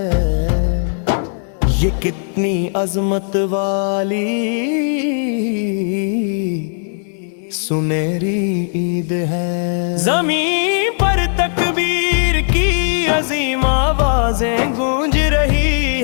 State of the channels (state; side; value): silent; right; digital silence